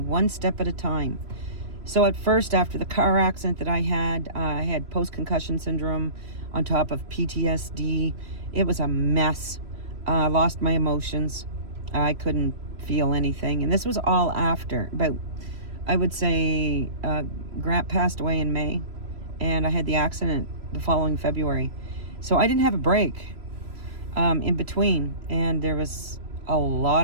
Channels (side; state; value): left; late; 3.0 ms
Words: step at a time. So at first, after the car accident that I had post-concussion syndrome on top of PTSD. It was a mess. I lost my emotions. I couldn't feel anything. And this was all after. But I would say Grant passed away in May. And I had the accident the following February. So I didn't have a break in between. And there was a